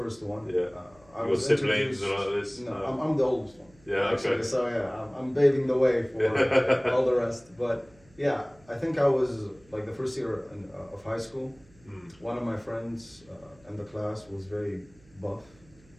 one. Yeah. I Your was siblings introduced- or like this? No, I'm the oldest one. Yeah, Actually, okay. so yeah, I'm paving the way for all the rest. But yeah, I think I was like the first year of high school. One of my friends in the class was very buff.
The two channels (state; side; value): noise; right; hum, 28 dB below the sound